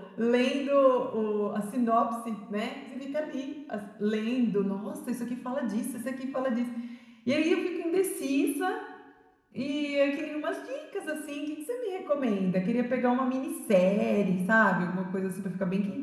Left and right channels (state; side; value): identical; both; correlation 1.00